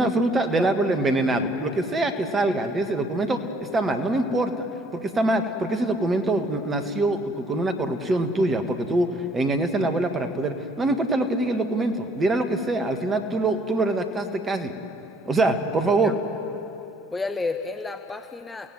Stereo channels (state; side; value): normal; both; correlation 0.62